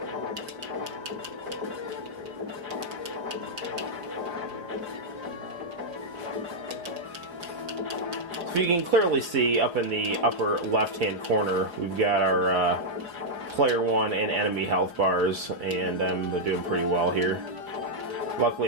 So you can clearly see up in the upper left-hand corner, we've got our player 1 and enemy health bars, and I'm doing pretty well here.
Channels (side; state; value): left; late; 5.3 ms